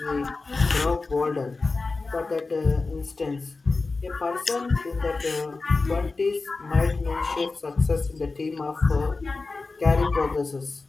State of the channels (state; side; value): quieter; right; 3.8 dB